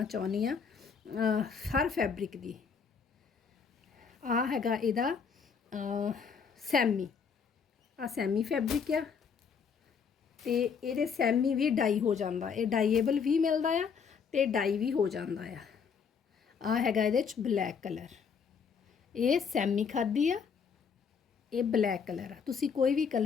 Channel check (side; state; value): right; quieter; 6.3 dB